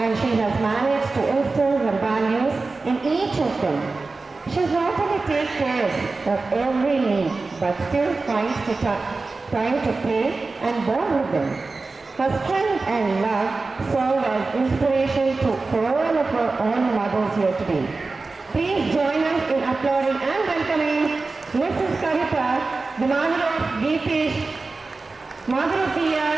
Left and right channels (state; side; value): quieter; left; 3.7 dB